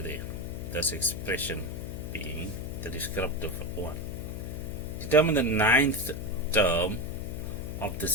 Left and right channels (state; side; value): noise; left; hum, 8 dB below the sound